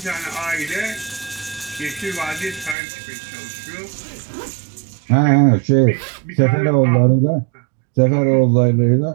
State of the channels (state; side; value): drops out; left; at 2.8 s